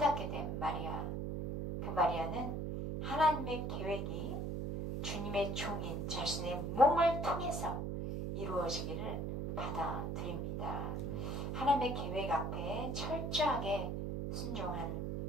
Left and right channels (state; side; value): noise; right; hum, 2 dB below the sound